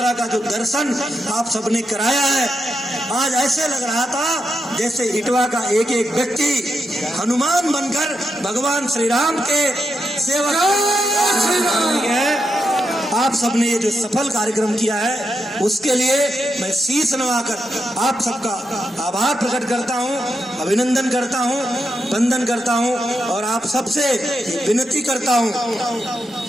का जो दर्शन आप सबने कराया है, आज ऐसे लग रहा था जैसे इटवा का एक एक व्यक्ति हनुमान बनकर भगवान श्री राम के सेवक है। आप सबने ये जो सफल कार्यक्रम किया है उसके लिए मैं शीश नवाकर आप सबका आभार प्रकट करता हूँ, अभिनंदन करता हूँ, वंदन करता हूँ और आप सबसे विनती करता हूँ।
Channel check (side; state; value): both; normal; correlation 0.85